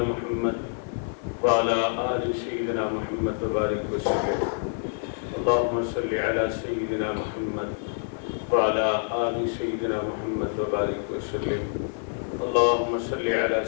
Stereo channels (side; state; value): right; silent; digital silence